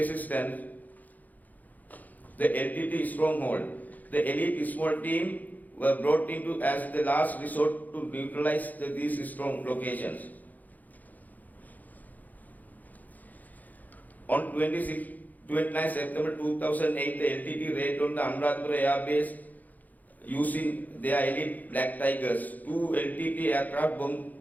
the LTT stronghold. The elite small team were brought into as the last resort to neutralize these strong locations. On 29 September 2008, the LTT raided on the Amarasinghe Air Base using their elite Black Tigers. 2 LTT aircraft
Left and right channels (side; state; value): right; late; 0.081 ms